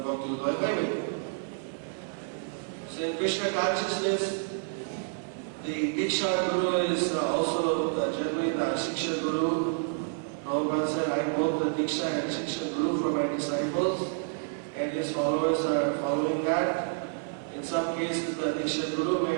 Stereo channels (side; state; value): left; silent; 58 dB below the other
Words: ভক্তি উদয় পাইবে। So in Krishna consciousness, the Diksha Guru is also generally the Shiksha Guru. Prabhupada said, I hold the Diksha and Shiksha Guru for my disciples, and his followers are following that. In some cases, the Diksha Guru may